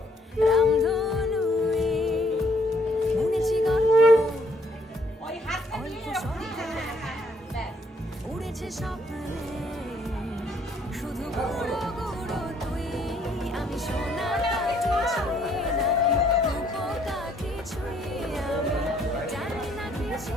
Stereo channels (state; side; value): normal; both; correlation 0.67